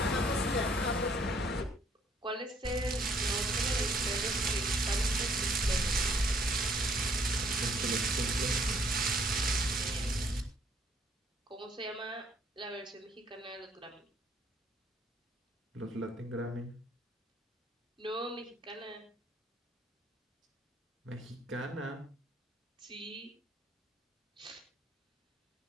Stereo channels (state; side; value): normal; both; correlation 0.63